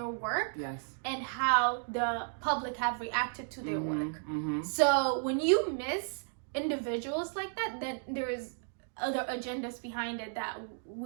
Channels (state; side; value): silent; left; 55 dB below the other